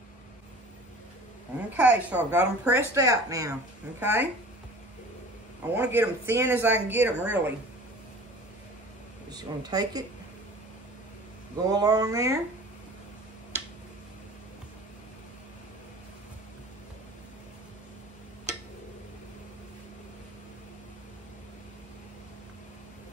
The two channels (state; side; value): normal; both; correlation 0.42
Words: Okay, so I've got them pressed out now, okay? I want to get them thin as I can get them, really. Just going to take it, go along there,